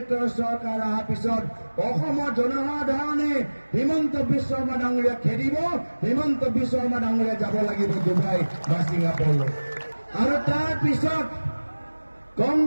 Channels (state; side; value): inverted; both; correlation -1.00